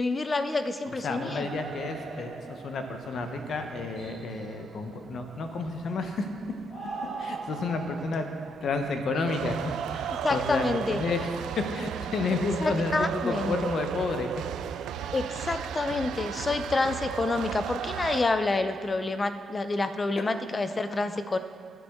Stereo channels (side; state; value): both; normal; correlation 0.79